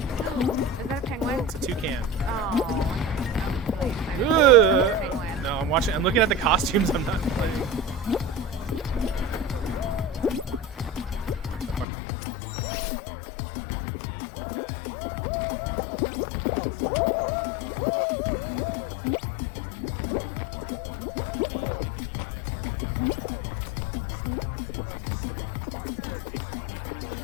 Is that a penguin? It's a toucan. Oh. I was really excited. Ugh. It's a penguin. No, I'm watching. I'm looking at the costumes. I'm not playing. So far, so good. Remember, there's a jump here. How many Fall Guy costumes do you think we're gonna see for Halloween? Oh my god, could I be a chicken? I mean, can't you just make any guy a Fall Guy outfit by adding like big slatted eyes and I just just need say, like a purple shirt and like basically a it. funny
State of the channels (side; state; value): right; drops out; at 11.9 s